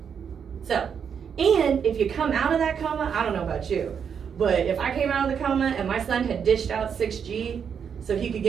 So, and if you come out of that coma, I don't know about you, but if I came out of the coma and my son had dished out 6G so he could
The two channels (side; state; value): left; quieter; 7.2 dB